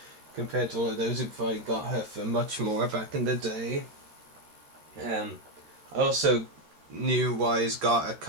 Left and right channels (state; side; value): late; left; 13 ms